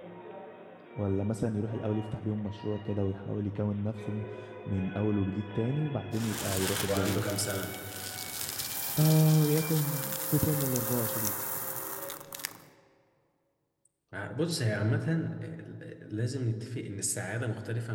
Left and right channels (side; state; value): both; identical; correlation 1.00